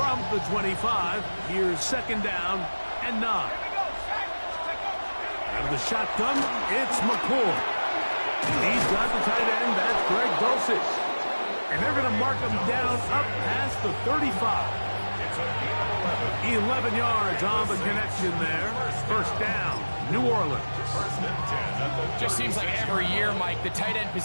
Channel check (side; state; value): both; inverted; correlation -1.00